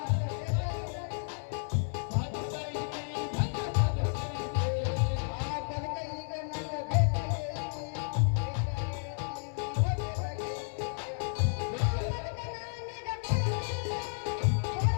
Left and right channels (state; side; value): silent; right; 56 dB below the other